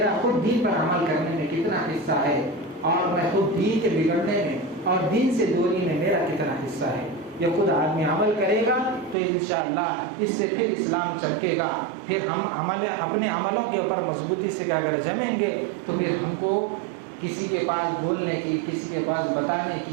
خود دین پر عمل کرنے میں کتنا حصہ ہے، اور میں خود دین کے بگڑنے میں اور دین سے دوری میں میرا کتنا حصہ ہے. یہ خود آدمی عمل کرے گا تو انشاءاللہ اس سے پھر اسلام چمکے گا. پھر ہم اپنے عملوں کے اوپر مضبوطی سے اگر جمیں گے تو پھر ہم کو کسی کے پاس بولنے کی، کسی کے پاس بتانے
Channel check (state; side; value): drops out; left; at 9.2 s